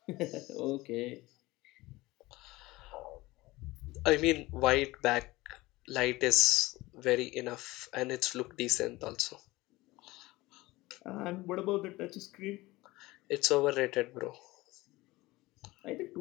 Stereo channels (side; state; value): right; quieter; 19.9 dB